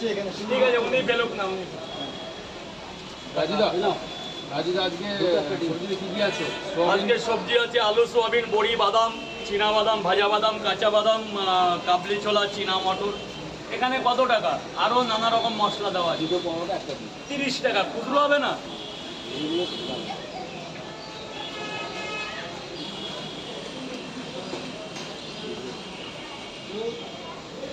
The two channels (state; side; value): identical; both; correlation 1.00